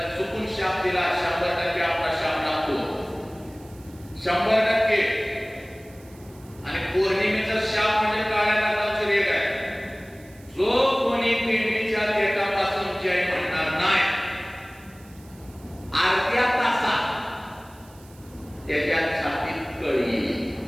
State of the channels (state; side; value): noise; right; hiss, 26 dB below the sound